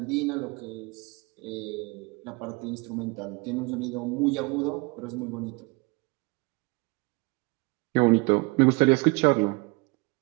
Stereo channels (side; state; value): left; quieter; 27.3 dB